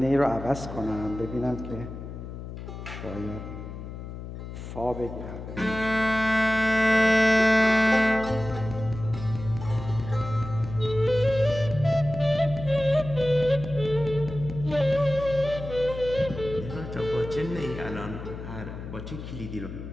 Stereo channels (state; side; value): noise; left; hum, 10 dB below the sound